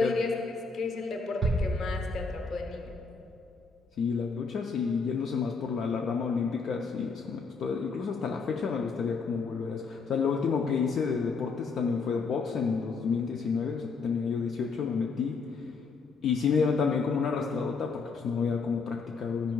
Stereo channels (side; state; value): right; quieter; 4.7 dB